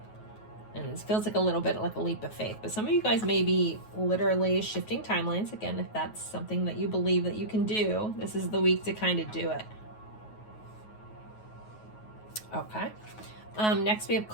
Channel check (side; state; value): right; late; 9.3 ms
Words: And it feels like a little bit like a leap of faith. But some of you guys may be literally shifting timelines. Again, if that's something that you believe that you can do, this is the week to kind of do it. Okay. Next, we have